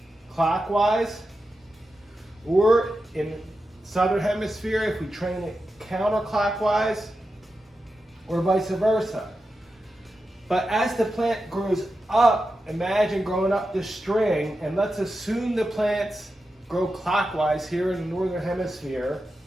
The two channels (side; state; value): both; normal; correlation 0.90